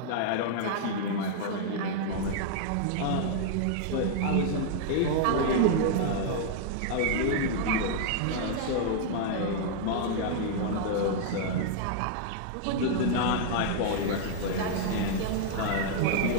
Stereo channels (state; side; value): different; both; correlation -0.01